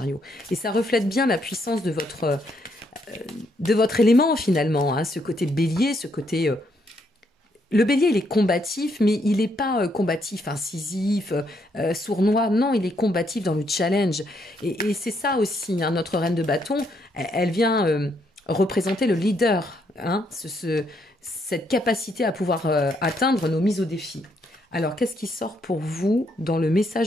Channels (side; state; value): both; normal; correlation 0.74